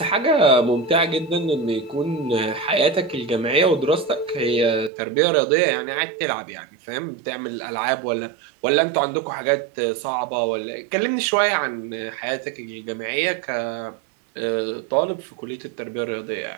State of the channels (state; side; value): drops out; left; at 4.9 s